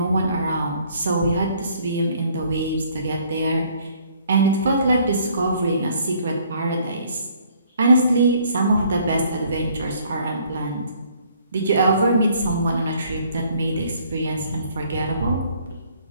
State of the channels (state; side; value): inverted; both; correlation -0.61